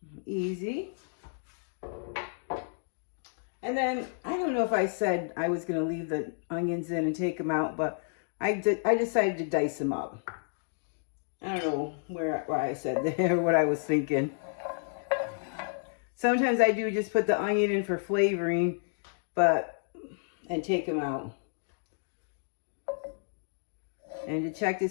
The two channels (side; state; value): right; silent; digital silence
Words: easy. And then, I don't know if I said I was going to leave the onions in and take them out, but I decided to dice them up. I don't know why I said that or what I was thinking. Sometimes I do just put the onion in for flavoring, and take them out. And to check to